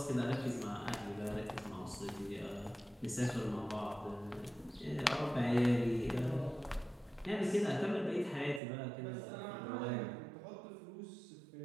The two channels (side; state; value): left; drops out; at 8.6 s